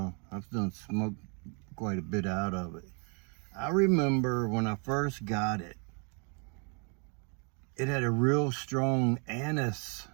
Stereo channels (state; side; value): quieter; left; 37.2 dB